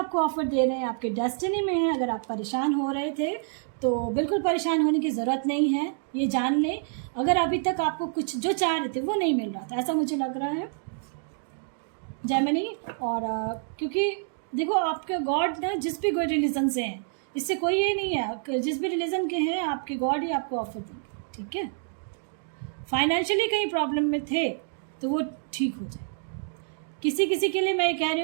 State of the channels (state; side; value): silent; left; 60 dB below the other